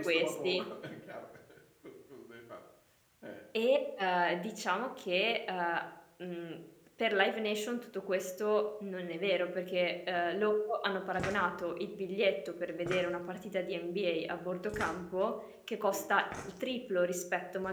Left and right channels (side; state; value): both; identical; correlation 1.00